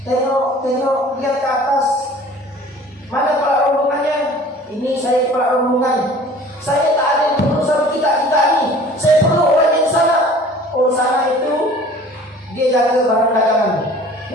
Tengok, lihat ke atas. Mana kepala rombongannya? Ini saya kepala rombongan. Saya tak ada yang perlu sama kita ini. Saya perlu orang yang sana. Oh, sana itu dia jaga barang dagangan.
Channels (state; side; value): normal; both; correlation 0.47